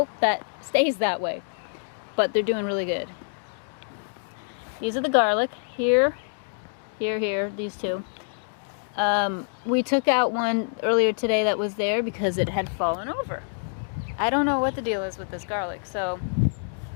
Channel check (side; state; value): right; silent; digital silence